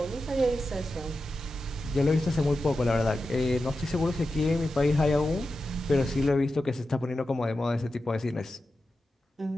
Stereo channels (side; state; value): both; normal; correlation 0.91